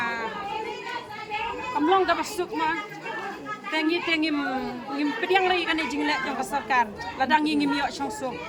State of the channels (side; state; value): both; identical; correlation 1.00